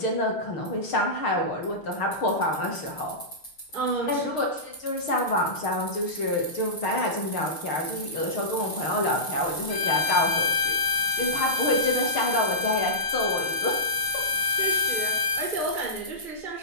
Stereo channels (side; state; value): right; late; 6.5 ms